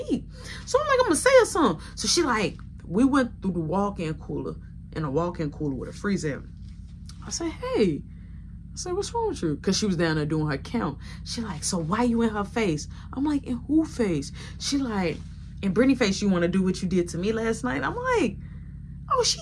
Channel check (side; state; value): both; identical; correlation 1.00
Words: eat? So I'm like, I'm going to say her something. So she like, we went through the walk-in cooler, in a walk-in cooler with a freezer. I said, hey. I said, what's wrong with you? Because she was down there doing her count. She like, so why you in her face? I'm like, in who face? She like, in Brittany face, you want to do what you did to me last night? I'm like, oh, she